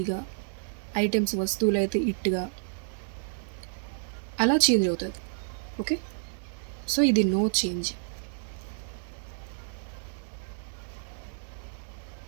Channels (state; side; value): silent; left; digital silence